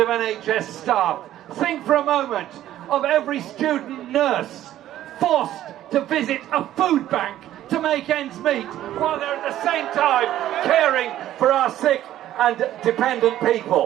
of NHS staff. Think for a moment of every student nurse forced to visit a food bank to make ends meet, while they're at the same time caring for our sick and dependent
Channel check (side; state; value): left; quieter; 12.9 dB